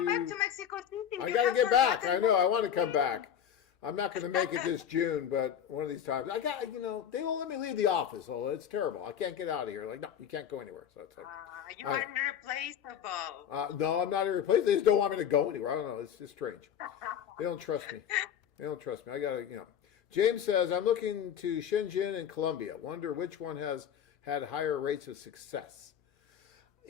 back to Mexico City. I You got to have get back. I forgotten know. I want to come back. I'm not going to make it this June, but one of these times. They won't let me leave the office. Oh, it's terrible. I can't get out of here. Like, no, you can't go anywhere. So it's like, You are irreplaceable. no, I'm not irreplaceable. They just don't want me to go anywhere. I don't know. It's just strange. They don't trust me. They don't trust me. I got to, James says, I'm looking to Shenzhen and Colombia. Wonder which one has had higher rates of success.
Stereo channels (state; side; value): quieter; right; 8.9 dB